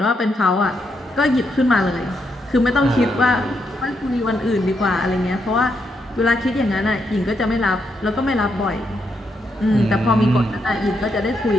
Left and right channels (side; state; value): both; normal; correlation 0.80